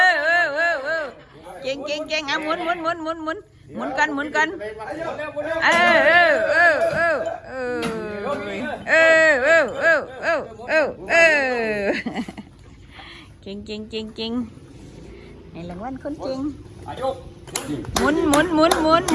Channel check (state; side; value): identical; both; correlation 1.00